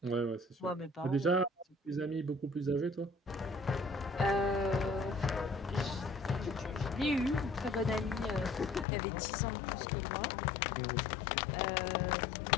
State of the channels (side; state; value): right; drops out; at 8.8 s